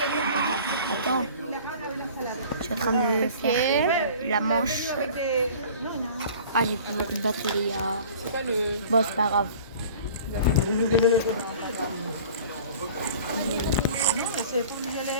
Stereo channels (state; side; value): inverted; both; correlation -0.45